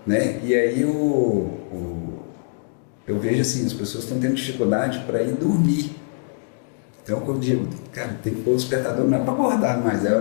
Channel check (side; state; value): right; silent; digital silence